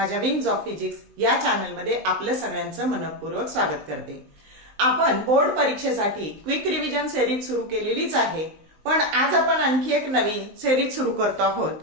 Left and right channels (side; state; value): left; late; 19 ms